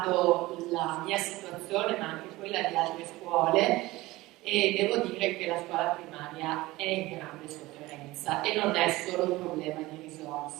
la mia situazione, ma anche quella di altre scuole, e devo dire che la scuola primaria è in grande sofferenza e non è solo un problema di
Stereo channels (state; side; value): quieter; left; 19.3 dB